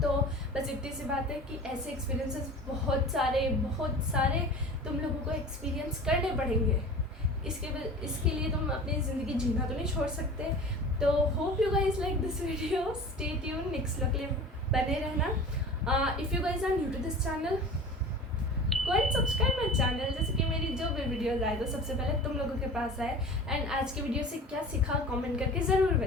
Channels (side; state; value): both; normal; correlation 0.38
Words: तो बस इतनी सी बात है कि ऐसे एक्सपीरियंसेस बहुत सारे तुम लोगों को एक्सपीरियंस करने पड़ेंगे। इसके लिए तुम अपनी ज़िंदगी जीना तो नहीं छोड़ सकते। तो hope you guys like this video, stay tune, next vlog के लिए बने रहना। If you guys are new to this channel, go and subscribe my channel, जैसे कि मेरी जो भी वीडियोज़ आए तो सबसे पहले तुम लोगों के पास आए। एंड आज की वीडियो से क्या सीखा कमेंट करके ज़रूर